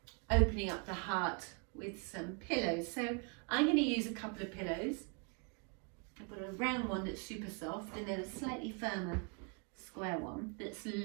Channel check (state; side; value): quieter; left; 36.5 dB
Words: opening up the heart with some pillows. So I'm going to use a couple of pillows. I've got a round one that's super soft and then a slightly firmer square one that's